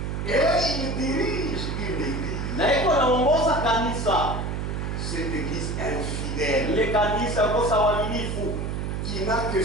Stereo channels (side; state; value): right; noise; hum, 3 dB below the sound